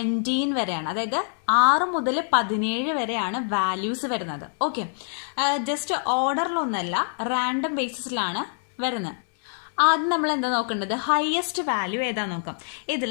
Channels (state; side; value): silent; right; 61 dB below the other